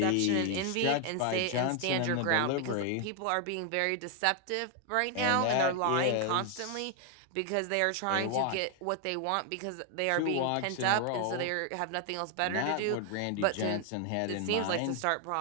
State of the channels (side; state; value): both; different; correlation 0.01